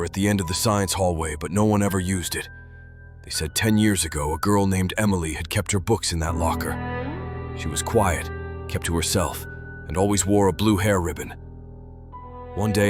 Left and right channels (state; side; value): identical; both; correlation 1.00